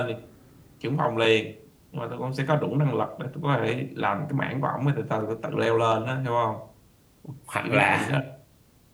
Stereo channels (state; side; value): identical; both; correlation 1.00